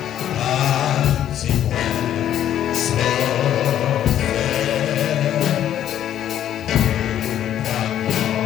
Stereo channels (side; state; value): right; quieter; 10.9 dB